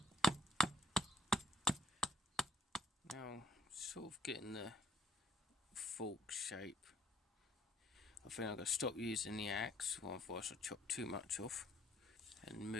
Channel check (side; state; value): both; normal; correlation 0.64